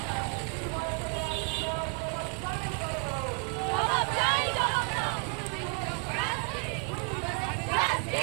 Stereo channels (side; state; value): left; quieter; 34.4 dB